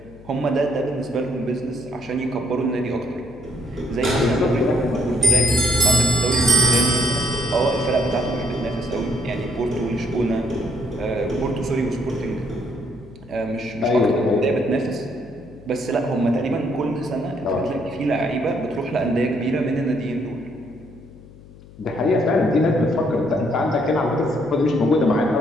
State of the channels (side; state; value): left; noise; hum, 21 dB below the sound